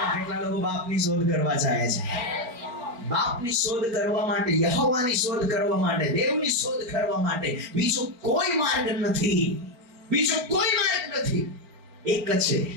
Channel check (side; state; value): left; late; 4.3 ms